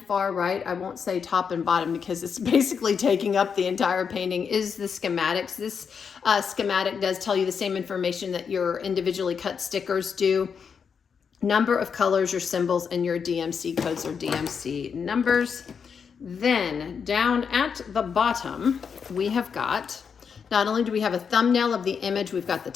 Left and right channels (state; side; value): quieter; right; 6.5 dB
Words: far right, I won't say top and bottom because it's basically taking up the entire painting, is the schematics. This schematic does tell you the same information that your individually cut stickers do. Number of colors, your symbols, and your DMC codes or DMC numbers. Then down at the bottom, we have got, not only do we have a thumbnail of the image, we've got the